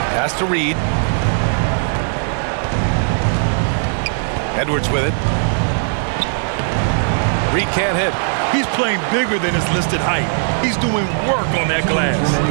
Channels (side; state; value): left; silent; digital silence